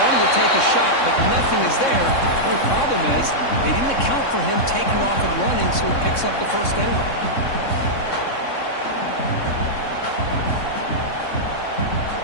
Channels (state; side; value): late; right; 3.6 ms